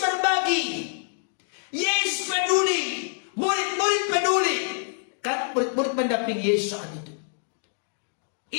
berbagi. Yesus peduli. Murid-murid peduli. Kan murid-murid mendampingi Yesus saat itu.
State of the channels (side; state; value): right; silent; digital silence